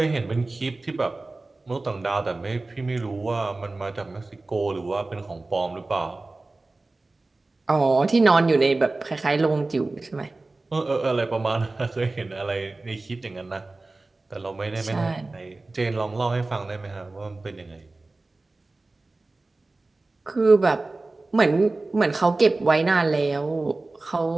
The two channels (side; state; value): left; quieter; 3.2 dB